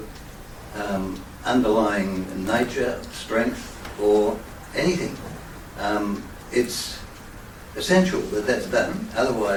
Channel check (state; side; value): identical; both; correlation 1.00